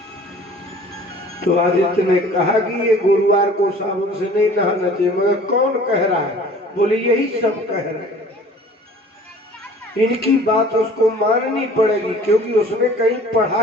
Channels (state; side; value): normal; both; correlation 0.48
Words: तो आदित्य ने कहा कि ये गुरुवार को साबुन से नहीं नहाना चाहिए, मगर कौन कह रहा है? बोले यही सब कह रहे हैं। इनकी बात उसको माननी पड़ेगी, क्योंकि उसने कहीं पढ़ा